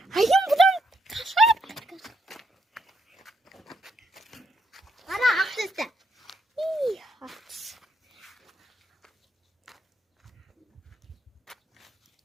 Ayım buradan kaçar. Ара, ақ түсті.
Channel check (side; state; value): both; normal; correlation 0.75